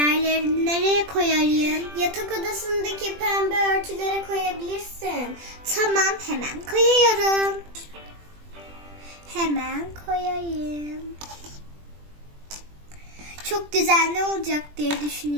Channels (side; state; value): left; late; 20 ms